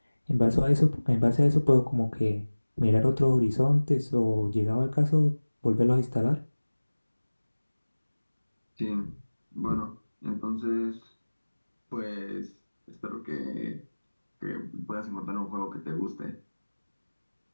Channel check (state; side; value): inverted; both; correlation -1.00